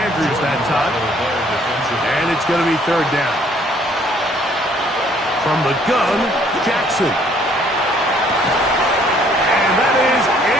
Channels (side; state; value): both; normal; correlation 0.62